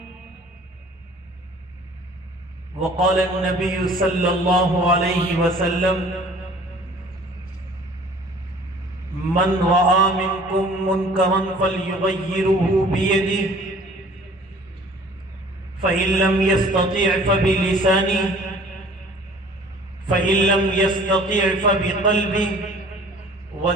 وقال النبي صلى الله عليه وسلم: من رأى منكم منكرا فليغيره بيده فإن لم يستطع فبلسانه فإن لم يستطع فبقلبه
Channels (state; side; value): normal; both; correlation 0.50